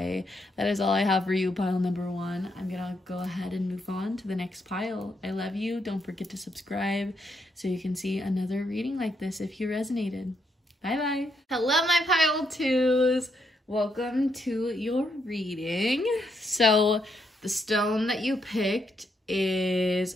That is all I have for you, pile number 1. I'm gonna go ahead and move on to the next pile. I love you. Don't forget to subscribe so you can see another reading like this if you resonated. Bye-bye. Hello, my pile 2s. Welcome to your reading. So the stone that you picked is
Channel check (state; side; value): normal; both; correlation 0.78